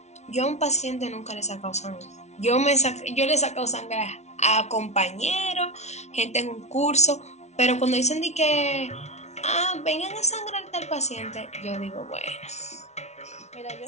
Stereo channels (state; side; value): late; right; 0.32 ms